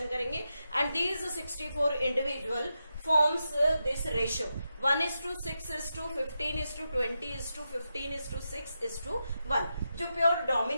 करेंगे। And these 64 individual forms this ratio 1:6:15:20:15:6:1, जो प्योर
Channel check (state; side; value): inverted; both; correlation -0.87